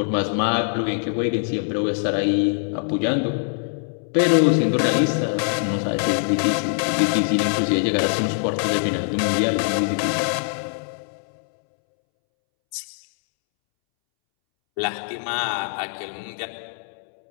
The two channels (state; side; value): silent; right; 64 dB below the other